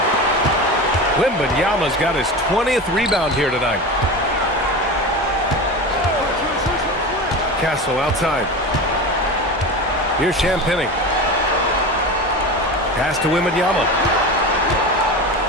Wembanyama's got his 20th rebound here tonight. Castle outside. Here's Champagnie. Pass to Wembanyama.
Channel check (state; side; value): normal; both; correlation 0.27